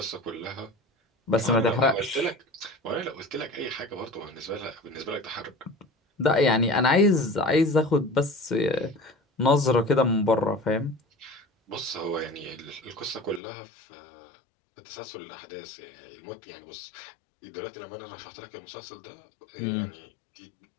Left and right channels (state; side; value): drops out; right; at 13.4 s